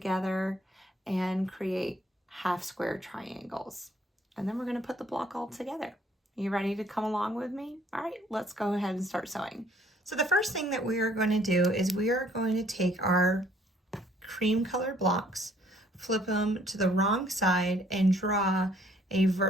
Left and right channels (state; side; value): normal; both; correlation 0.63